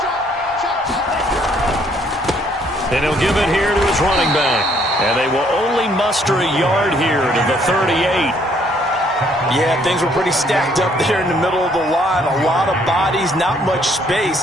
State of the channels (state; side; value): normal; both; correlation 0.65